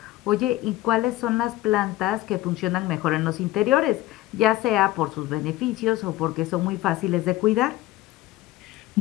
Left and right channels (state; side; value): quieter; right; 16.5 dB